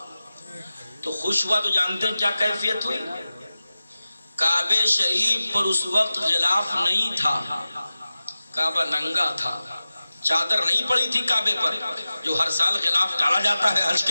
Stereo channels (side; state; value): both; inverted; correlation -0.95